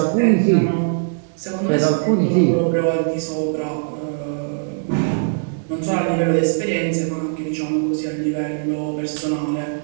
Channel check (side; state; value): left; silent; digital silence